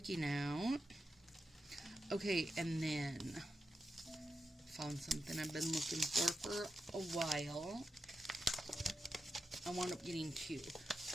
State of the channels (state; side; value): normal; both; correlation 0.88